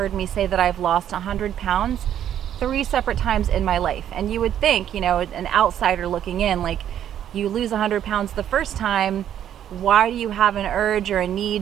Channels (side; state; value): left; quieter; 10.4 dB